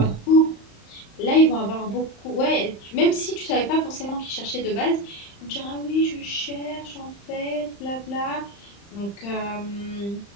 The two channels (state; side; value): late; right; 35 ms